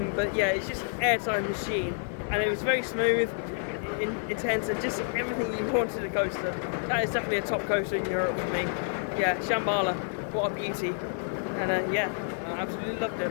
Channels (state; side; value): silent; right; 59 dB below the other